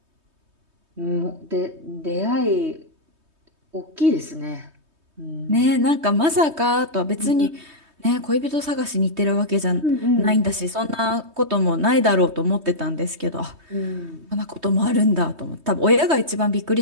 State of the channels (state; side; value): late; left; 3.2 ms